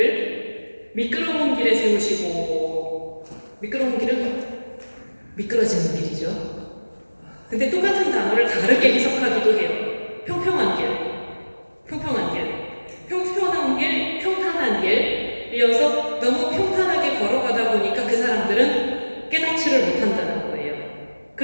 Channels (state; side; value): inverted; both; correlation -1.00